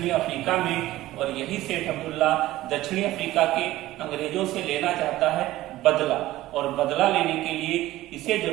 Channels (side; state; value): left; quieter; 16.1 dB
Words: अफ्रीका में। और यही सेठ अब्दुल्ला दक्षिणी अफ्रीका के अंग्रेजों से लेना चाहता है बदला, और बदला लेने के लिए इसे